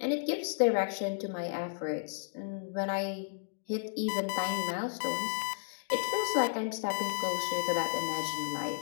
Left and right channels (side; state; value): right; silent; digital silence